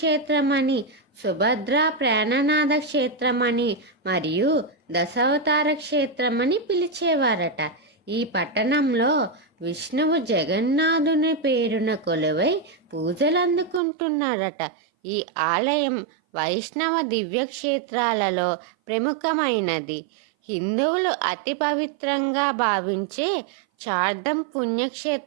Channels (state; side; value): drops out; left; at 13.8 s